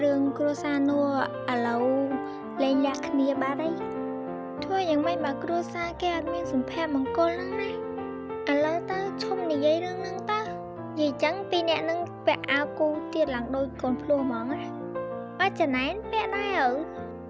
រឿងគ្រួសារនោះឥឡូវលែងលាក់គ្នាបាត់ហើយ ធ្វើយ៉ាងម៉េចបើគ្រួសារគេអត់មានសុភមង្គលហ្នឹងណាឥឡូវទៅឈុំនិយាយរឿងហ្នឹងទៅនិយាយចឹងពីអ្នកនឹងពាក់អាវគូទៀតឡើងដូចកូនភ្លោះហ្មងណាអត់ចំណែនពាក់ដែរឪ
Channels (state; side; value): identical; both; correlation 1.00